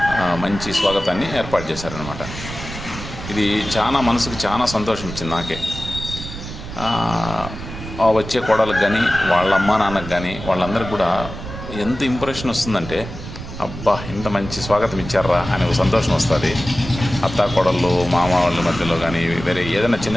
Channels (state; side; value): noise; right; rumble, 10 dB below the sound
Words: మంచి స్వాగతాన్ని ఏర్పాటు చేశారనమాట. ఇది చాలా మనసుకు చాలా సంతోషం ఇచ్చింది నాకే. వచ్చే కోడలకు కానీ వాళ్ళ అమ్మ నాన్నకు కానీ వాళ్ళందరికీ కూడా ఎంత ఇంప్రెషన్ వస్తుందంటే, అబ్బా ఇంత మంచి స్వాగతం ఇచ్చారా అనే ఒక సంతోషం వస్తుంది. అత్త కోడళ్ళు మామ వాళ్ళ మధ్యలో కానీ వేరే ఏదైనా